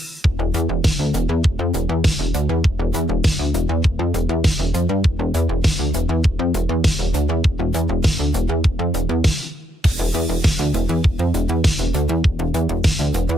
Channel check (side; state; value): both; normal; correlation 0.78